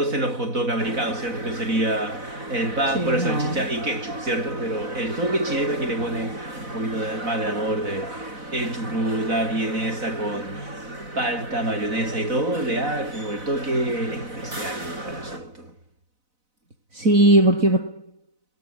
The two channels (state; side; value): late; left; 4.0 ms